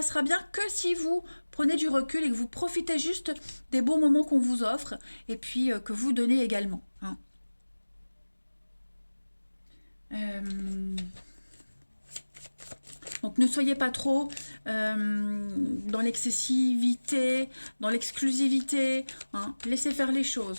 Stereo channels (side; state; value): both; inverted; correlation -1.00